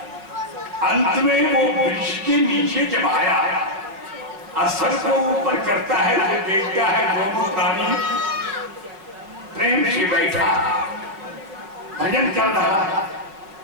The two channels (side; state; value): left; late; 5.3 ms